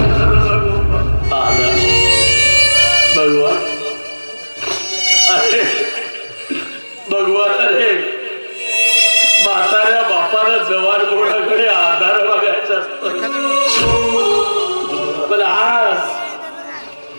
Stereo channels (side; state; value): both; inverted; correlation -1.00